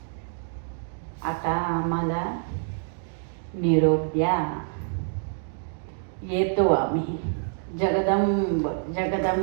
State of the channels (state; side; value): silent; left; digital silence